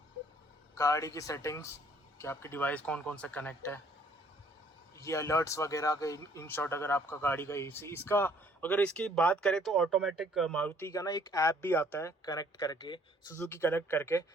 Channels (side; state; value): both; normal; correlation 0.60